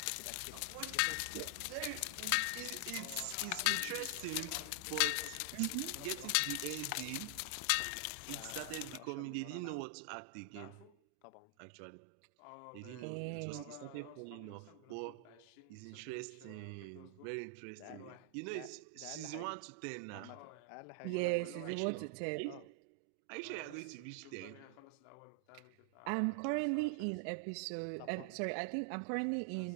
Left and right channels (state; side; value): different; both; correlation 0.00